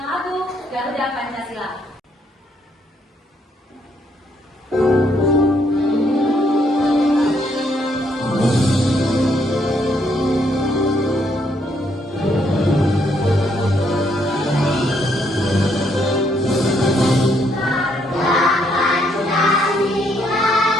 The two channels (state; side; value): normal; both; correlation 0.72